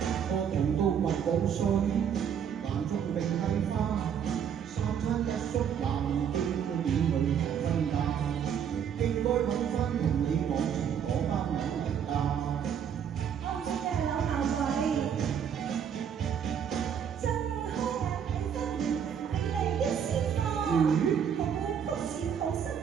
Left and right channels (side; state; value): left; quieter; 8.1 dB